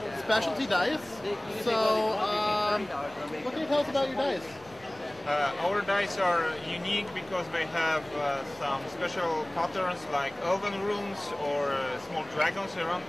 specialty dice. So, what can you tell us about your dice? Our dice are unique because they have some special patterns like elven runes or small dragons around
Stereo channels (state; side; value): noise; left; hum, 27 dB below the sound